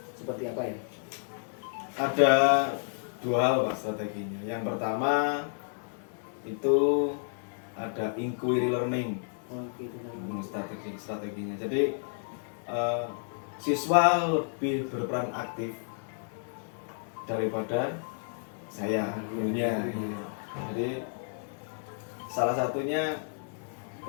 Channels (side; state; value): right; silent; digital silence